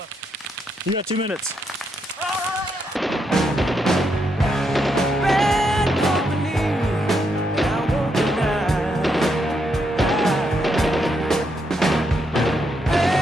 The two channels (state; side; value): normal; both; correlation 0.79